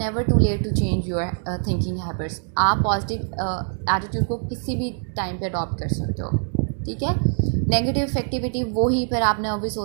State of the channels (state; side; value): silent; left; digital silence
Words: too late to change your thinking habits. आप पॉजिटिव एटीट्यूड को किसी भी टाइम पे अडॉप्ट कर सकते हो. ठीक है. नेगेटिव इफेक्टिविटी वही फिर आपने ऑब्वियस